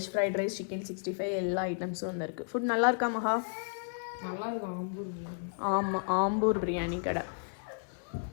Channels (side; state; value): right; silent; digital silence